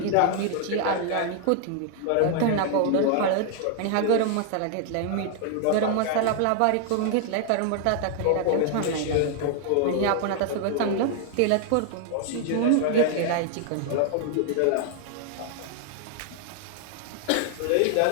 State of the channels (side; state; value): both; different; correlation 0.00